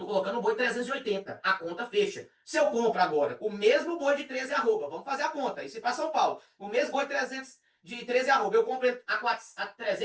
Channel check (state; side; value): identical; both; correlation 1.00